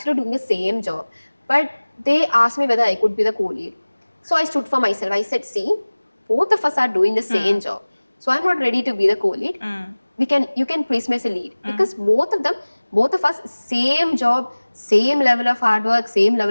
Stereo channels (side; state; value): both; inverted; correlation -1.00